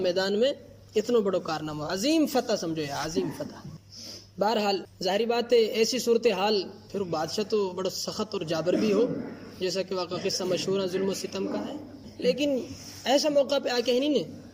میں اتنا بڑا کارنامہ، عظیم فتح سمجھو یا عظیم فتح۔ بہرحال ظاہری بات ہے ایسی صورتحال پھر بادشاہ تو بڑا سخت اور جابر بھی ہو، جیسا کہ واقعہ قصہ مشہور ہے ظلم و ستم کا ہے، لیکن ایسا موقع پہ آ کے ہی نہیں نے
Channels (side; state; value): both; identical; correlation 1.00